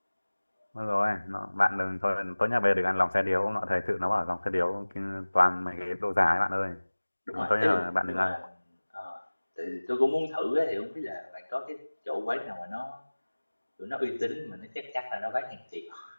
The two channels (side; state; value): both; inverted; correlation -1.00